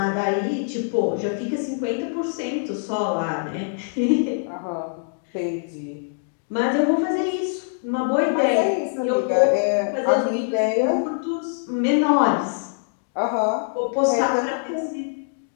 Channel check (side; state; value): right; silent; digital silence